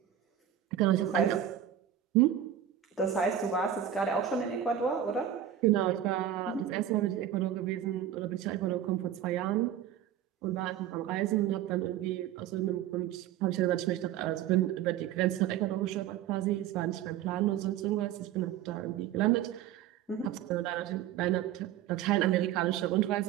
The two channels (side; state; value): left; quieter; 10.7 dB